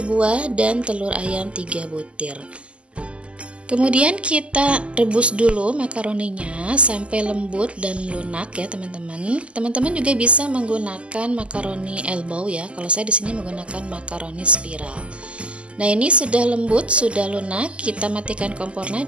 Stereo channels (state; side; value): late; left; 0.055 ms